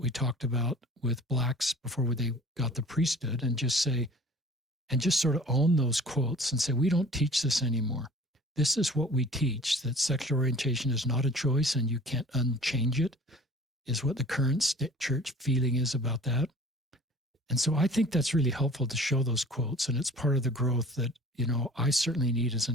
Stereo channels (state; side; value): normal; both; correlation 0.46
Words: talked about with Blacks before they got the priesthood, and just sort of own those quotes and say, we don't teach this anymore. This is what we teach, that sexual orientation is not a choice and you can't unchange it, is what the current church feeling is about that. And so I think that's really helpful to show those quotes, and it's part of the growth that, I certainly need as